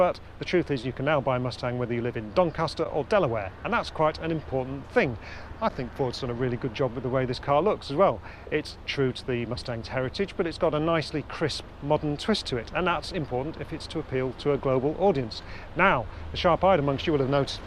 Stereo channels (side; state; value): both; identical; correlation 1.00